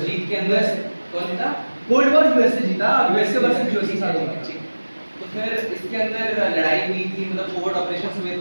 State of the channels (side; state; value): both; inverted; correlation -1.00